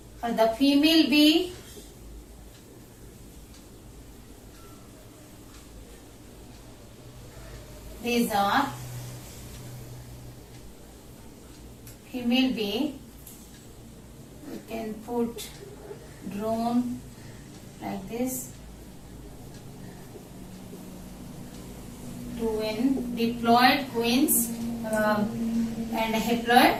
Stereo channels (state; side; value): identical; both; correlation 1.00